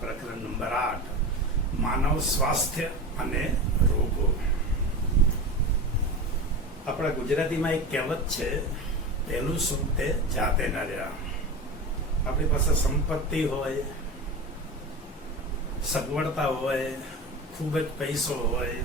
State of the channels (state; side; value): normal; both; correlation 0.27